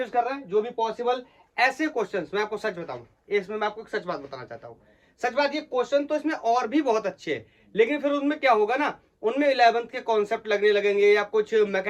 कर रहे हैं जो भी पॉसिबल। ऐसे क्वेश्चंस मैं आपको सच बताऊं, इसमें मैं आपको एक सच बात बताना चाहता हूं, सच बात ये क्वेश्चन तो इसमें और भी बहुत अच्छे हैं, लेकिन फिर उनमें क्या होगा ना, उनमें 11th के कॉन्सेप्ट लगने लगेंगे या कुछ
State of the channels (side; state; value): both; identical; correlation 1.00